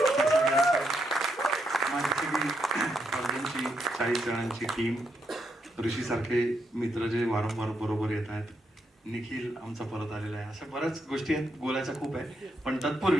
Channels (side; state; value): both; normal; correlation 0.80